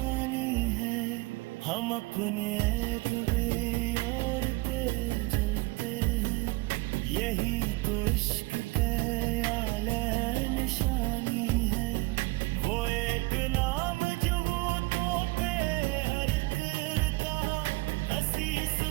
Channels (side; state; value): left; quieter; 22.9 dB